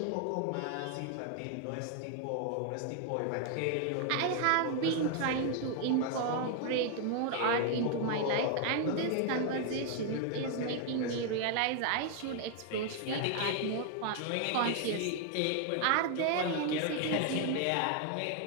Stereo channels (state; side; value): different; both; correlation 0.00